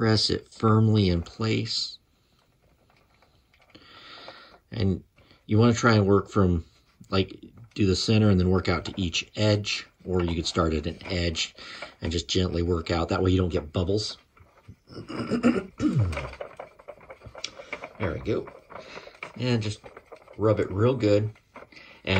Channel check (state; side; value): identical; both; correlation 1.00